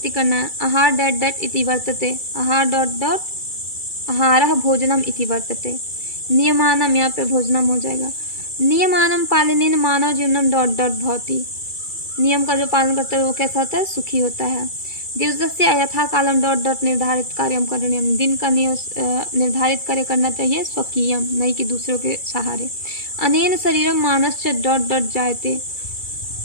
करना है। आहार डैट डैट इति वर्तते, आहार डॉट डॉट आहारः भोजनम इति वर्तते। नियमानम, यहाँ पे भोजनम हो जाएगा। नियमानम पालनेन मानव जीवनम डॉट डॉट भवति, नियम का जो पालन करता है वो कैसा होता है? सुखी होता है। दिवसस्य यथा कालम डॉट डॉट निर्धारित कार्यम करणीयम, दिन का निर्धारित कार्य करना चाहिए स्वकीयम, नहीं कि दूसरों के सहारे। अनेन शरीरम मानस्य डॉट डॉट जायते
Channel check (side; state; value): right; late; 2.3 ms